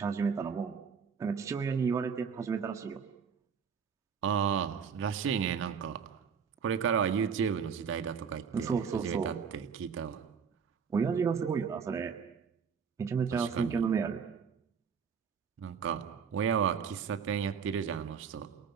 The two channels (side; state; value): left; quieter; 6.5 dB